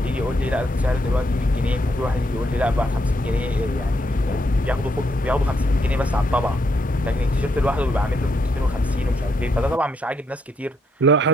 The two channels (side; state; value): both; normal; correlation 0.76